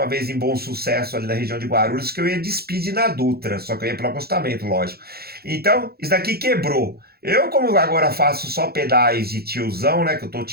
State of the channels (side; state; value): left; late; 0.45 ms